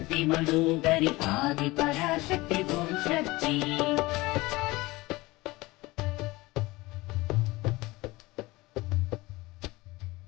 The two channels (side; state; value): right; quieter; 21.1 dB